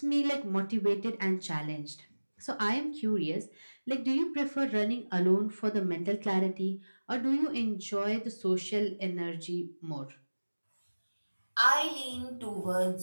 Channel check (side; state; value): both; inverted; correlation -1.00